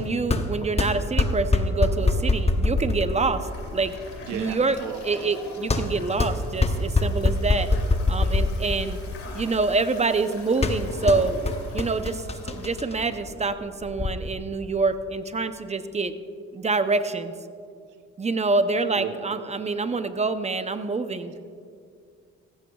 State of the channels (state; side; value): normal; both; correlation 0.51